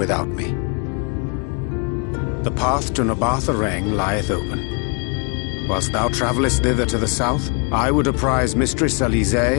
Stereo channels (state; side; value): quieter; right; 35.9 dB